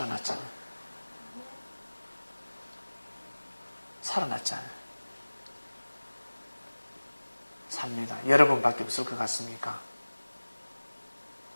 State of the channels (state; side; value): inverted; both; correlation -1.00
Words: 살아났잖아요. 삽니다. 여러분밖에 없을 것 같습니까?